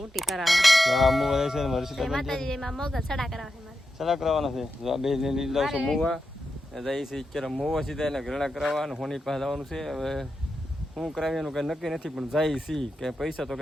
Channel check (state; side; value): normal; both; correlation 0.88